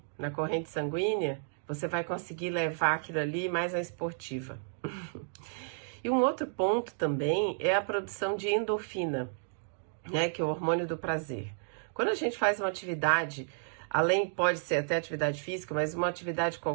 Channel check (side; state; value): left; silent; digital silence